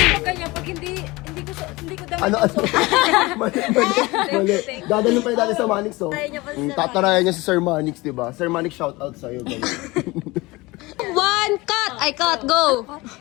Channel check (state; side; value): quieter; right; 22.2 dB